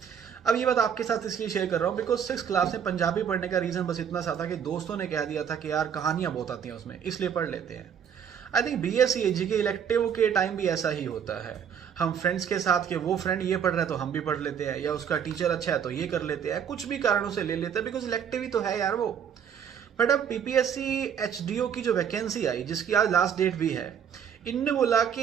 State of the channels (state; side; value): quieter; left; 8.0 dB